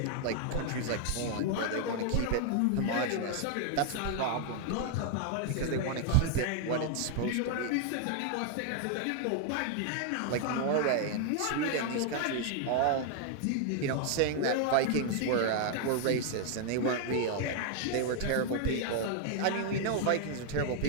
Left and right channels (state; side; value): different; both; correlation 0.00